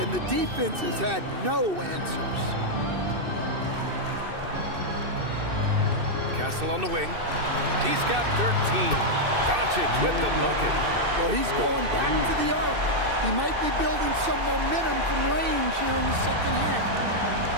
the defense has had no answers. Castle on the wing. He's got 13. Doncic with the bucket. Well, he's going back to the arc. He might be building some momentum from range here in the second half.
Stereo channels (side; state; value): left; late; 2.6 ms